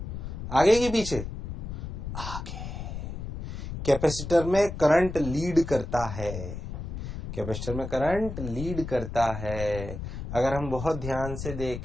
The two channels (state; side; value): noise; left; rumble, 7 dB below the sound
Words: आगे कि पीछे? आगे। कैपेसिटर में करंट लीड करता है। कैपेसिटर में करंट लीड करता है। अगर हम बहुत ध्यान से